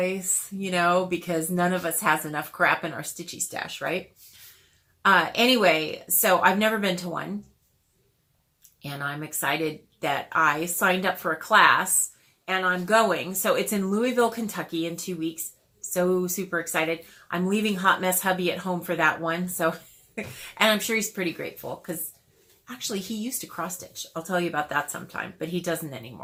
because none of us has enough crap in our stitchy stash, right? Anyway, so I've never been to one, and I'm excited that I signed up for a class, and I'm going. So it's in Louisville, Kentucky in 2 weeks. So super excited. I'm leaving Hot Mess Hubby at home for that one. So, and I'm sure he's pretty grateful because actually he used to cross stitch. I'll tell you about that sometime, but he doesn't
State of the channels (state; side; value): identical; both; correlation 1.00